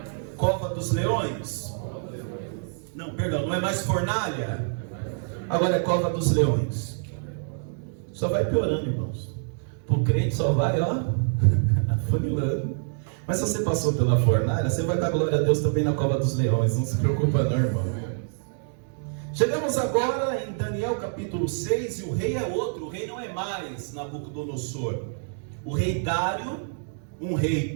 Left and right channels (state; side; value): silent; left; digital silence